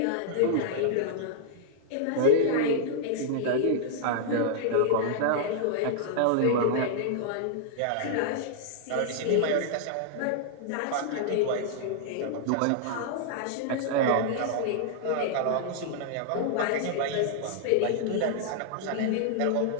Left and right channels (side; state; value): both; different; correlation -0.01